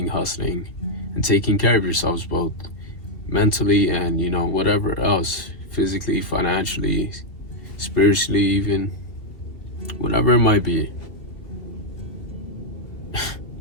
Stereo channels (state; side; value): late; right; 2.7 ms